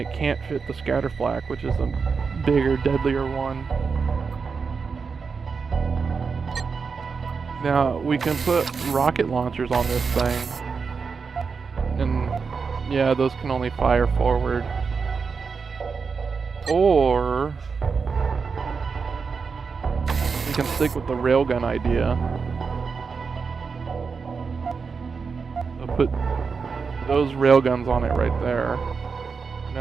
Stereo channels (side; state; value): left; quieter; 5.3 dB